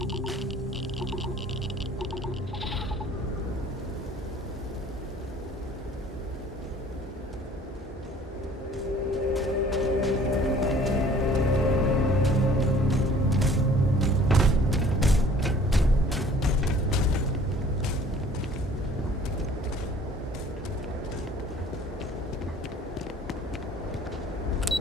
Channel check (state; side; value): normal; both; correlation 0.52